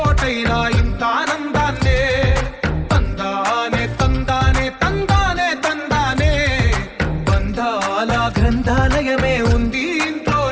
ఇంత ఆనందాన్నే. తందానే తందానే తందానే తందానే బంధాల గ్రంథాలయమే ఉంది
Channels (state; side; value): identical; both; correlation 1.00